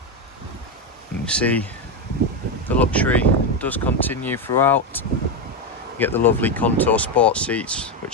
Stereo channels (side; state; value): both; normal; correlation 0.09